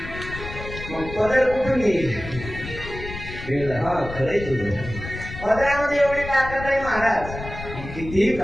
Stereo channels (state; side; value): noise; left; rumble, 10 dB below the sound